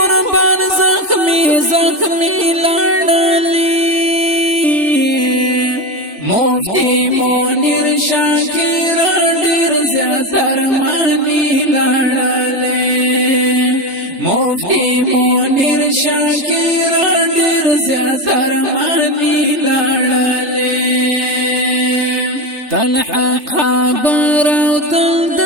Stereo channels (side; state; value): left; late; 3.3 ms